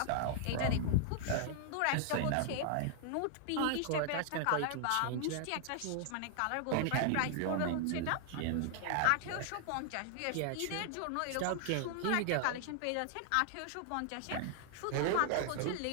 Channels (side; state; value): both; different; correlation 0.00